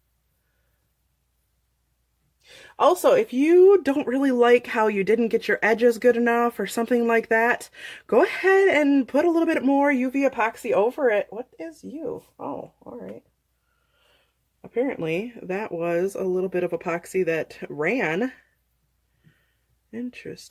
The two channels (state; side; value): identical; both; correlation 1.00